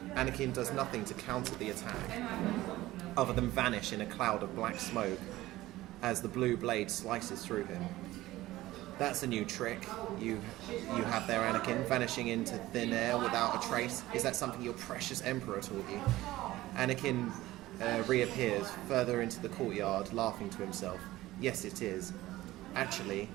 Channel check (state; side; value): quieter; left; 16.8 dB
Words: Anakin does nothing to counter the attack, other than vanish in a cloud of black smoke as the blue blade slices through him. That's a new trick you have there, Anakin, vanishing into thin air without a trace. Is that something your precious Emperor taught you? Anakin reappears further into the courtyard, laughing to himself. Yes, it is. Actually,